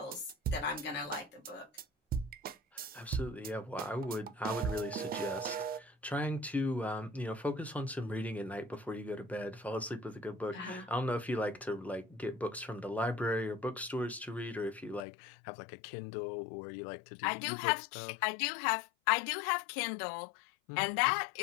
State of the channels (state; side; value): drops out; right; at 15.1 s